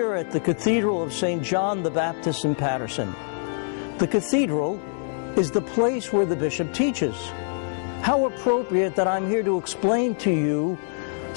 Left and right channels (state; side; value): silent; right; digital silence